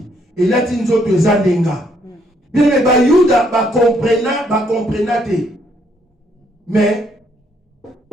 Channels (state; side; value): normal; both; correlation 0.70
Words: Et là ti nzoto ezandenga. Bien mais ba Yuda ba comprena te. Mais